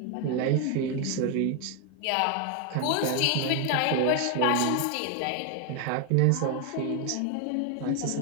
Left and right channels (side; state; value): both; different; correlation 0.01